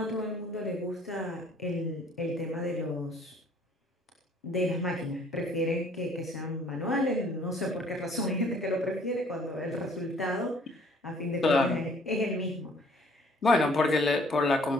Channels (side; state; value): both; normal; correlation 0.58